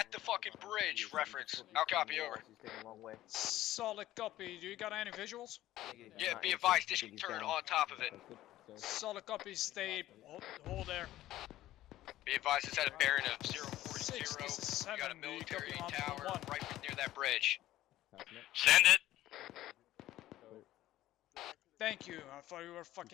the fucking bridge, reference. I'll copy, over. Solid copy. Do you got any visuals? Yeah, be advised, this can turn on top of it. Solid copy. Stay. Hold there. Be advised, it's at a bearing of 040. 6, this is 7. You got a Do you military copy on tower 1? right near that bridge. Send it! Thank you. I thought you were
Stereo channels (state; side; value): quieter; right; 14.7 dB